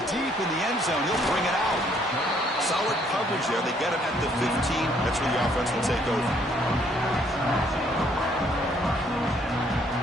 deep in the end zone, he'll bring it out. Solid coverage there. They get him at the 15. That's where the offense will take over.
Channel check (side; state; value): both; normal; correlation 0.66